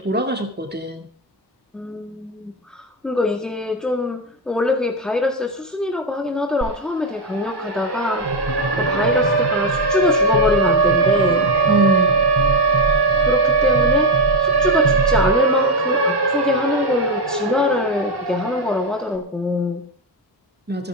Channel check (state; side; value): normal; both; correlation 0.07